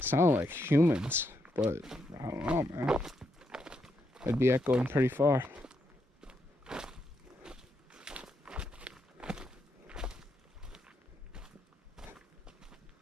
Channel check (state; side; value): normal; both; correlation 0.80